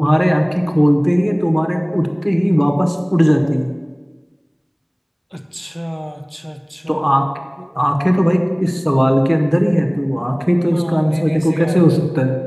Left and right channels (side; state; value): both; identical; correlation 1.00